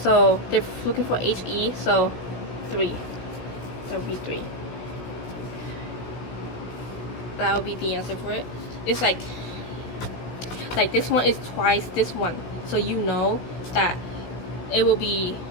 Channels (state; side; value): late; right; 17 ms